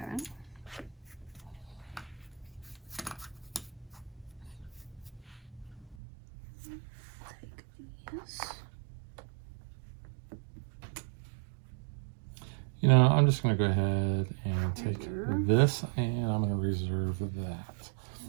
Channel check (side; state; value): left; drops out; at 6.0 s